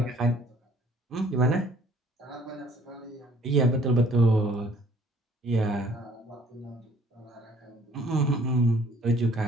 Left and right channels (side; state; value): both; normal; correlation 0.58